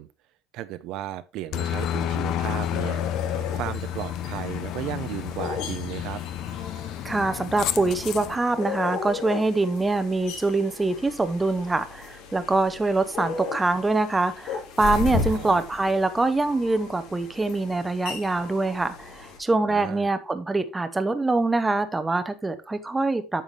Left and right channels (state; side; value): normal; both; correlation 0.82